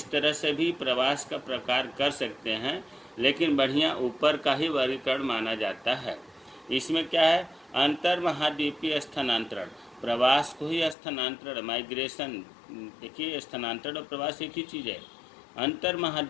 तरह से भी प्रवास का प्रकार कर सकते हैं। लेकिन बढ़िया ऊपर का ही वर्गीकरण माना जाता है। इसमें क्या है, अंतर महाद्वीपीय स्थानांतरण, प्रवास को ही स्थानांतरण, माइग्रेशन। देखिए स्थानांतरण और प्रवास एक ही चीज़ है। अंतर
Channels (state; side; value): drops out; right; at 11.0 s